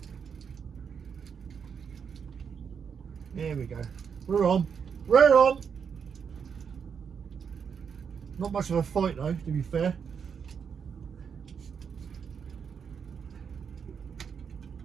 There we go. We're on. We're on. Not much of a fight though, to be fair.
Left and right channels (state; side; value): quieter; left; 6.7 dB